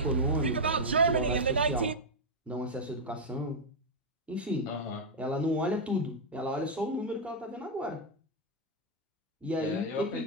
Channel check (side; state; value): both; normal; correlation 0.00